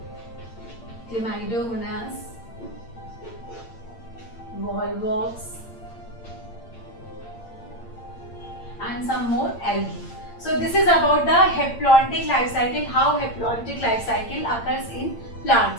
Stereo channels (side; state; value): right; late; 8.7 ms